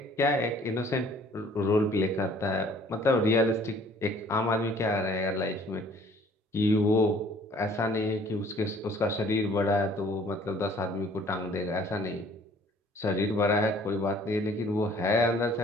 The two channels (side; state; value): both; normal; correlation 0.55